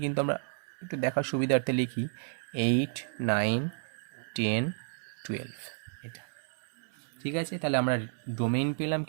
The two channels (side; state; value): left; silent; 57 dB below the other